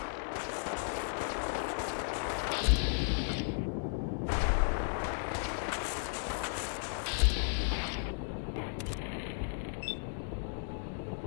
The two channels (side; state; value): right; silent; digital silence